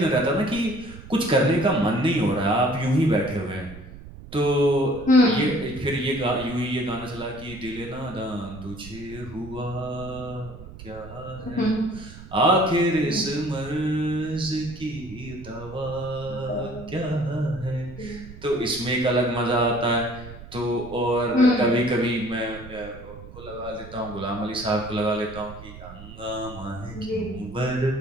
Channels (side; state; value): right; noise; rumble, 15 dB below the sound